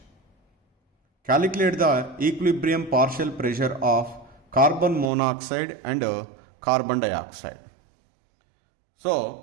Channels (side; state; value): left; drops out; at 5.1 s